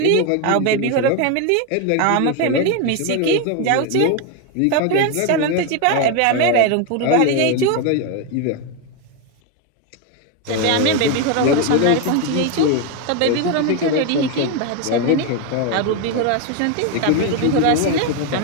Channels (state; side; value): different; both; correlation 0.02